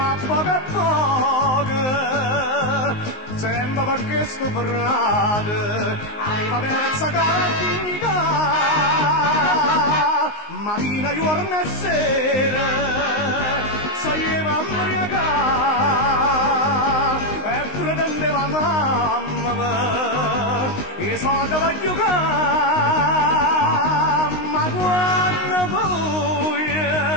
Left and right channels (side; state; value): right; late; 19 ms